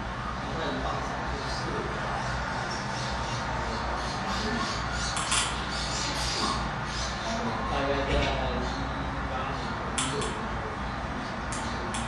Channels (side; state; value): both; identical; correlation 1.00